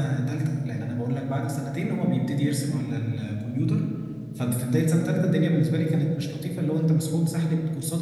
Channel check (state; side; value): noise; left; hum, 27 dB below the sound